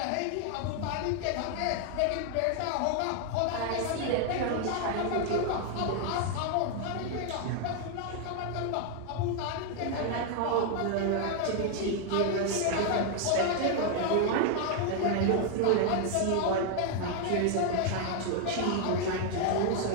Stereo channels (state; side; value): different; both; correlation 0.00